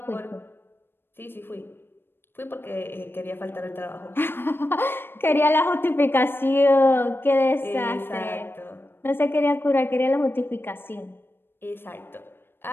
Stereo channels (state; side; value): late; right; 0.10 ms